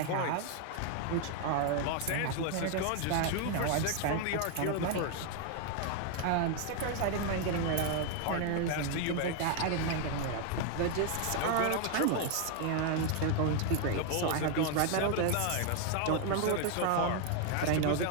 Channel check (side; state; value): both; different; correlation 0.00